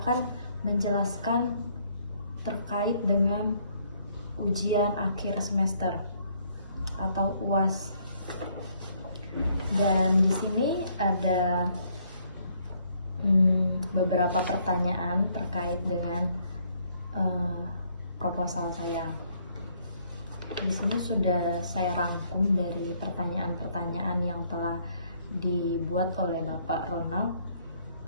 menjelaskan terkait dengan ujian akhir semester atau UAS. Dan di sini ada beberapa pertanyaan terkait dengan proposal saya. Di sini sudah saya rangkum dari pertanyaan-pertanyaan yang telah dibuat oleh Bapak Ronald.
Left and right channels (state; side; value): inverted; both; correlation -0.67